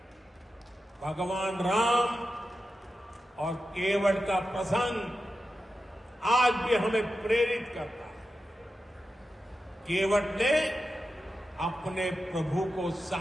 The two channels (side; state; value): both; normal; correlation 0.91